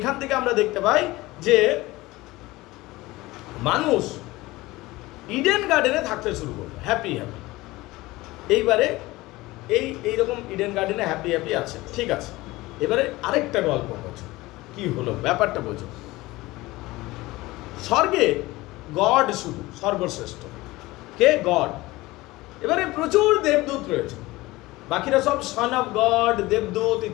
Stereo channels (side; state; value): right; quieter; 19.8 dB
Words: থেকে আমরা দেখতে পাই যে মানুষ ইডেন গার্ডেনে থাকতে শুরু করলো, হ্যাপি হ্যাপি। এইবারে এইরকম ইডেন গার্ডেনে হ্যাপি হ্যাপি আছে, ঠিক আছে। এবারে আরেকটা গল্প বোঝো, কি হলো ব্যাপারটা বোঝো। স্বর্গে গড শুধু সর্বশ্রেষ্ঠ, কে? গড। এবারে প্রচুর দেবদূত রয়েছে, বাকিরা সব সন অফ গড, দেবদূত